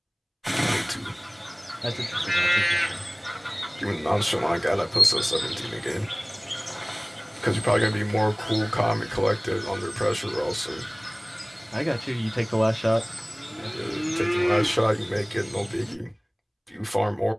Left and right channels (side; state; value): both; identical; correlation 1.00